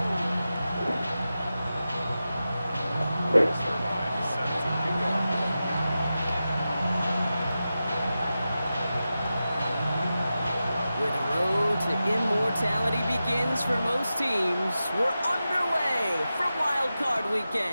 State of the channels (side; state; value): both; inverted; correlation -0.92